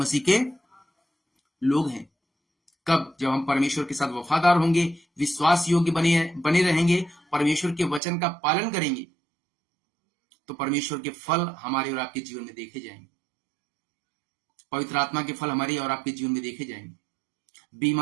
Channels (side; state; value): left; drops out; at 8.0 s